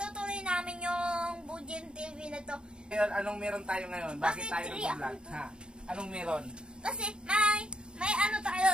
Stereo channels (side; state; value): left; late; 0.050 ms